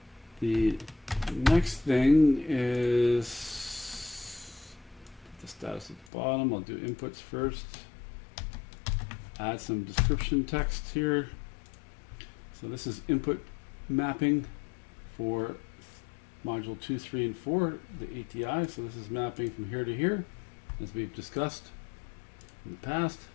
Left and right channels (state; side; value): drops out; right; at 6.1 s